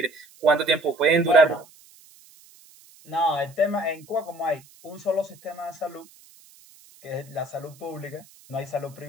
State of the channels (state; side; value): noise; right; hiss, 25 dB below the sound